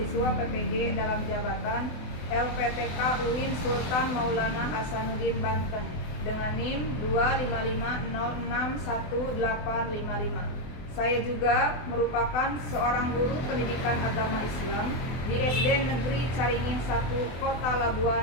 PPG dalam jabatan LPTK UIN Sultan Maulana Hasanuddin Banten dengan NIM 255061855. Saya juga merupakan seorang guru pendidikan agama Islam di SD Negeri Caringin 1, Kota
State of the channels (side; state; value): right; late; 24 ms